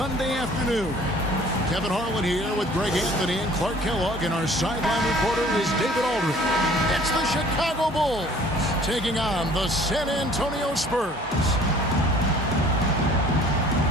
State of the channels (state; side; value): normal; both; correlation 0.52